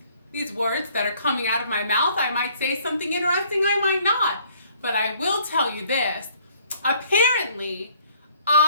these words that are coming out of my mouth. I might say something interesting, I might not. But I will tell you this. Apparently,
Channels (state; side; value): inverted; both; correlation -0.60